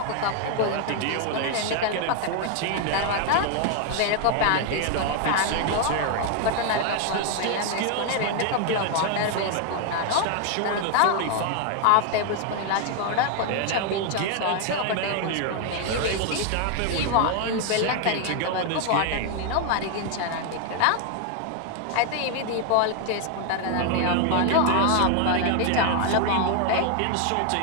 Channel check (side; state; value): both; different; correlation 0.00